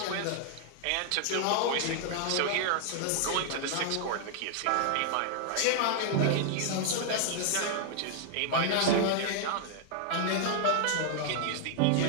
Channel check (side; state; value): both; different; correlation -0.01